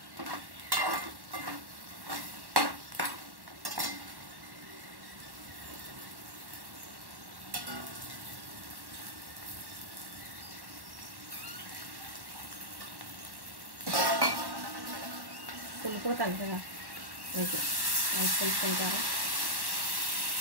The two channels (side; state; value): left; late; 1.1 ms